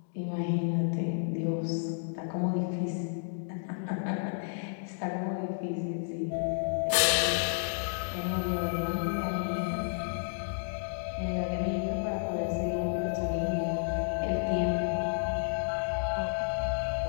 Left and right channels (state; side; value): silent; right; digital silence